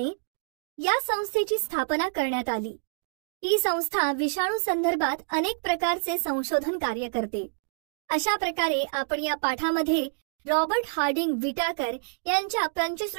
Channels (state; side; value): silent; left; digital silence